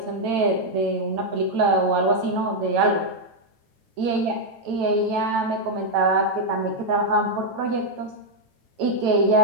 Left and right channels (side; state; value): left; late; 8.9 ms